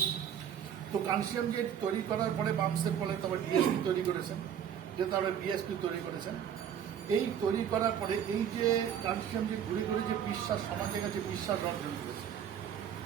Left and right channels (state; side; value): quieter; left; 9.0 dB